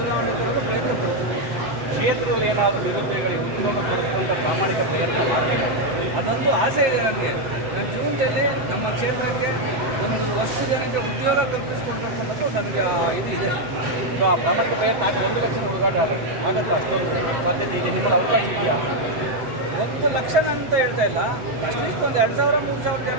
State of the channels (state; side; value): late; left; 8.0 ms